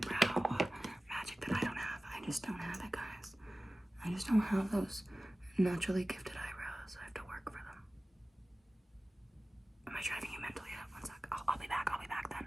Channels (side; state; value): both; normal; correlation 0.97